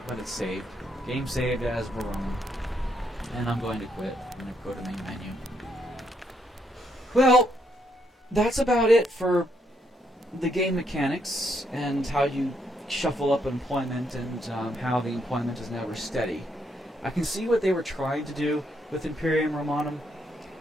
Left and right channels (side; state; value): both; normal; correlation 0.75